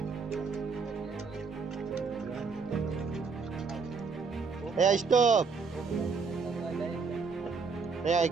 Yeah, stop. Yeah,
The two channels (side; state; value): left; quieter; 5.0 dB